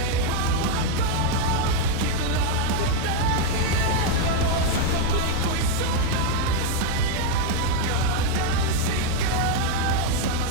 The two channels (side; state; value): both; different; correlation 0.01